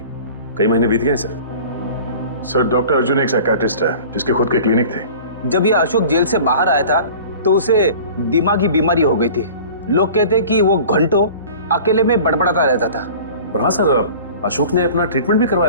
कई महीने बीत गए सर। सर डॉक्टर अर्जुन एक साइकियाट्रिस्ट है जिसके खुद के क्लिनिक थे। जब ये अशोक जेल से बाहर आया था तो उसे दिमागी बीमारी हो गई थी। लोग कहते कि वो घंटों अकेले में बड़बड़ाता रहता था। और हाँ सर, अशोक ने अपना ट्रीटमेंट भी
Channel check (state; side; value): inverted; both; correlation -0.42